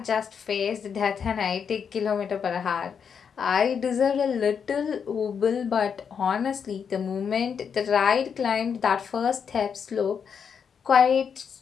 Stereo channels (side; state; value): right; quieter; 6.9 dB